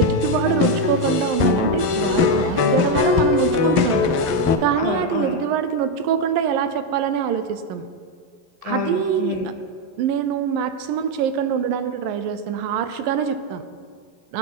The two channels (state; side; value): late; left; 11 ms